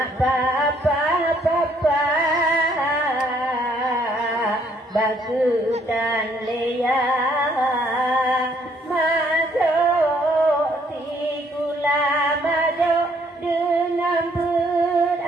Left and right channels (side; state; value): both; normal; correlation 0.66